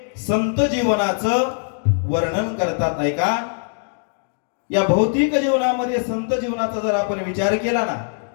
संत जीवनाचं वर्णन करतात. ऐका या भौतिक जीवनामध्ये संत जीवनाचा जर आपण विचार केला ना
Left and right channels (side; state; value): right; silent; 64 dB below the other